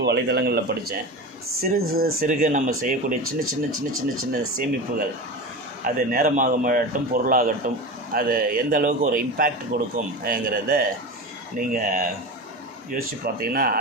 வலைதளங்களில் படித்தேன். சிறுக நம்ம செய்யக்கூடிய சின்ன சேமிப்புகள், அது நேரமாகட்டும் பொருளாகட்டும், அது எந்த அளவுக்கு ஒரு இம்பேக்ட் கொடுக்கும்ங்கிறத நீங்கள் யோசித்து பார்த்தீங்கன்னா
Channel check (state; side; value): normal; both; correlation 0.26